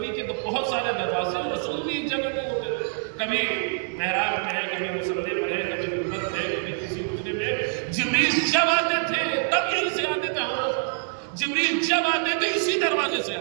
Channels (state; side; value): silent; left; digital silence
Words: کے تو بہت سارے دروازے، رسول بھی ایک جگہ پہ ہوتے تھے، کبھی محراب میں ہے، کبھی مصلی پر ہے، کبھی منبر پہ ہے، کبھی کسی حجرے میں۔ جبریل جب آتے تھے تب یہیں سے آتے تھے، ہاں جبریل جب آتے تھے اسی دروازے سے